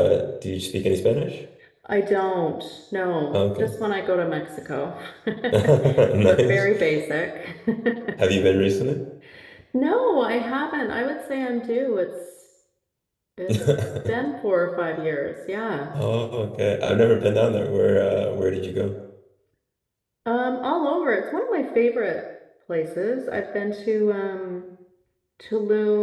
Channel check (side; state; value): both; identical; correlation 1.00